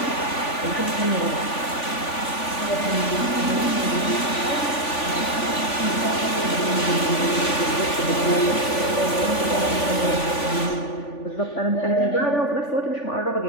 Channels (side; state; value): right; late; 3.5 ms